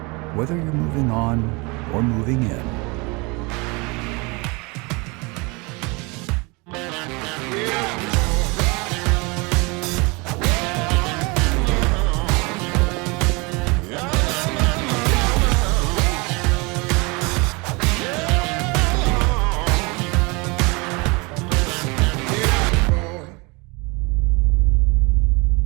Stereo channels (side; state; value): left; quieter; 27.5 dB